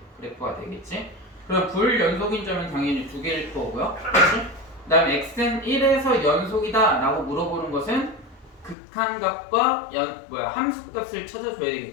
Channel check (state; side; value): drops out; right; at 8.8 s